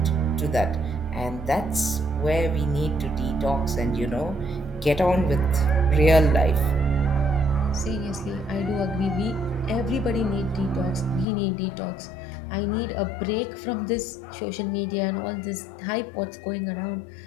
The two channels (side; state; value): right; drops out; at 11.2 s